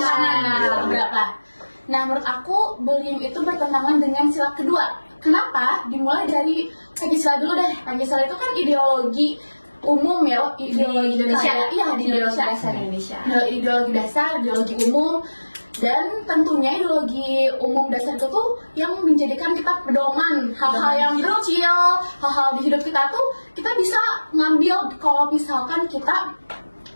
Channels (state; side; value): inverted; both; correlation -1.00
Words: keberapa? Nah, menurut aku bullying itu bertentangan dengan sila kedua. Kenapa? Dimulai dari Pancasila dulu deh. Pancasila itu kan ideologi umum ya, ideologi Indonesia. Iya, di Indonesia. Ideologi dasar, ideologi umum. Dan tentunya ideologi umum dasar itu tuh yang menjadikan kita pedoman hal-hal yang kecil, hal-hal di hidup kita tuh kita bisa ngambil kalau misalkan kita